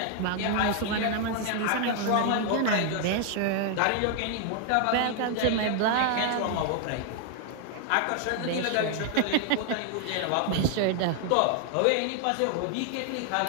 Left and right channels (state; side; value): different; both; correlation 0.00